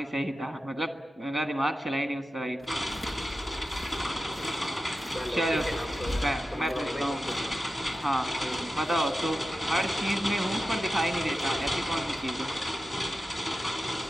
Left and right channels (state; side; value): normal; both; correlation 0.92